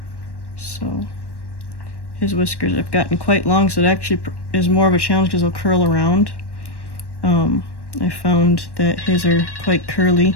So his whiskers have gotten quite long, so it actually is more of a challenge because they'll curl around. I found that his are quite curly.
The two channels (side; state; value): right; late; 1.1 ms